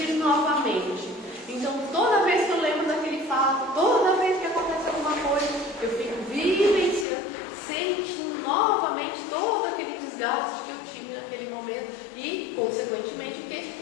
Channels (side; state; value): right; drops out; at 7.1 s